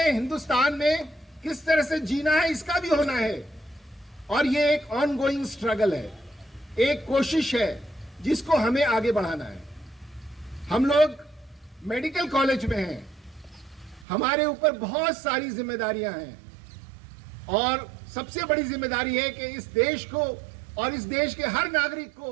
हिंदुस्तान में किस तरह से जीना है इसका भी होना है। और ये एक ऑनगोइंग स्ट्रगल है, एक कोशिश है जिसको हमें आगे बढ़ाना है। हम लोग मेडिकल कॉलेज में हैं, हमारे ऊपर बहुत सारी जिम्मेदारियां हैं और सबसे बड़ी जिम्मेदारी है कि इस देश को और इस देश के हर नागरिक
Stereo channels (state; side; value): drops out; left; at 14.1 s